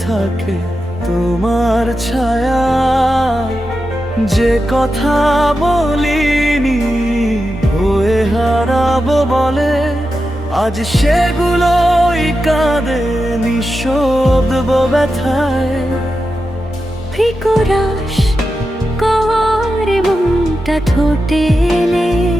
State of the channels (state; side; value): normal; both; correlation 0.90